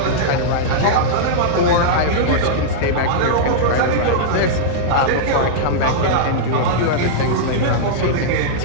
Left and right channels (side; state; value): both; different; correlation -0.03